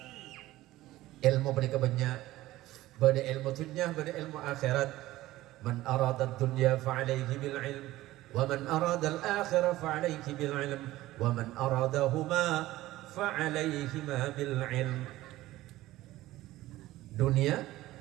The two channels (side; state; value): left; quieter; 16.5 dB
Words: Ilmu panikah banyak, bade ilmu dunia, bade ilmu akhirat. Man arada dunya fa'alaihi bil ilm, wa man arada al akhirah fa'alaihi bil ilm, wa man aradahuma fa'alaihima bil ilm. Dunia